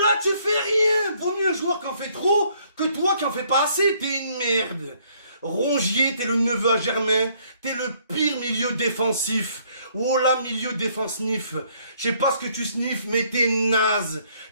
là, tu fais rien. Vaut mieux un joueur qui en fait trop que toi qui en fais pas assez. T'es une merde. Rongier, t'es le neveu à Germain. T'es le pire milieu défensif. Oh là, milieu défensif. Je sais pas ce que tu sniffes, mais t'es naze.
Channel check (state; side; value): inverted; both; correlation -0.65